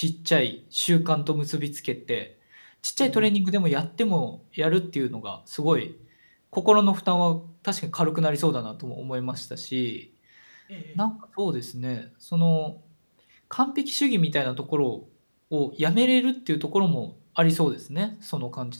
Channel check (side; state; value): both; inverted; correlation -1.00